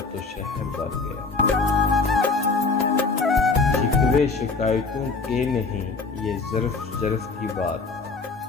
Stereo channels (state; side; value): quieter; right; 4.2 dB